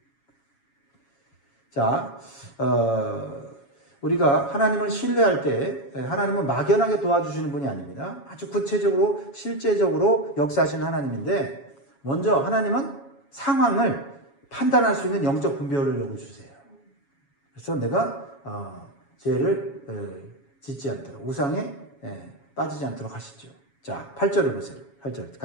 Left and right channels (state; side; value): late; right; 7.2 ms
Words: 자, 우리가 하나님을 신뢰할 때 하나님은 막연하게 도와주시는 분이 아닙니다. 아주 구체적으로 실제적으로 역사하시는 하나님인데, 먼저 하나님은 상황을 판단할 수 있는 영적 분별을 요구주세요. 그래서 내가 죄를 짓지 않도록, 우상에 빠지지 않도록 하시죠. 자, 8절을 보세요. 8절